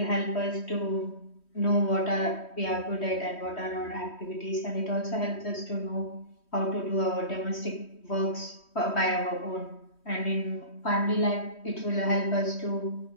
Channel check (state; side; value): late; right; 3.1 ms